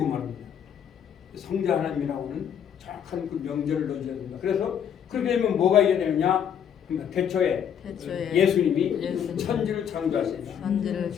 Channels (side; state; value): right; quieter; 8.5 dB